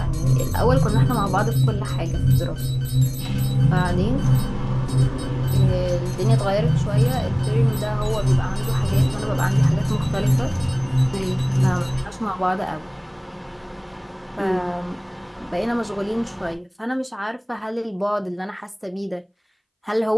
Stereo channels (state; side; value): identical; both; correlation 1.00